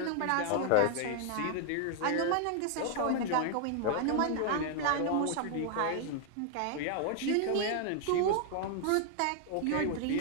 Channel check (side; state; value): both; different; correlation 0.00